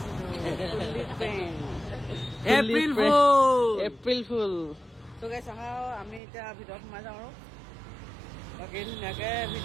এপ্ৰিল ফুল। ত' গাইছ আহা, আমি এতিয়া ভিতৰত সোমাই যাওঁ আৰু বাকী ধুনীয়াকৈ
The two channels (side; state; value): left; drops out; at 6.2 s